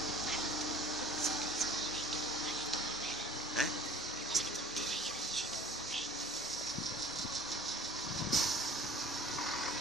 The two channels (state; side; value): normal; both; correlation 0.47